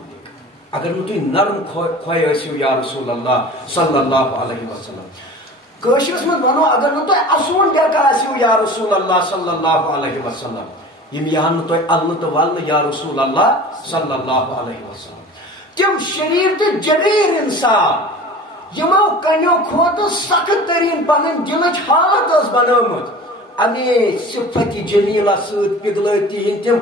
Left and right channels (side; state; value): both; normal; correlation 0.39